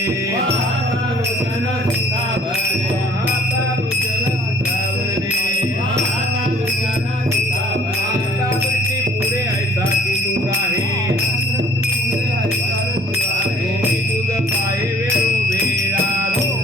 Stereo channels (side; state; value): both; normal; correlation 0.53